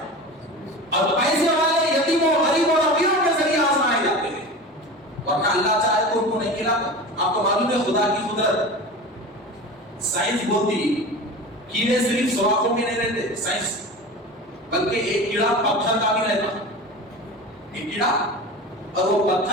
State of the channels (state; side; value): normal; both; correlation 0.32